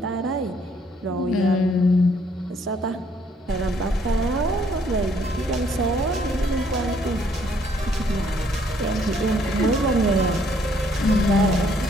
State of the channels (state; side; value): normal; both; correlation 0.66